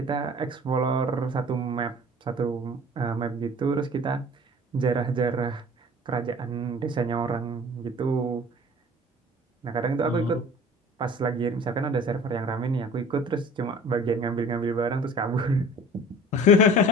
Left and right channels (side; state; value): both; normal; correlation 0.45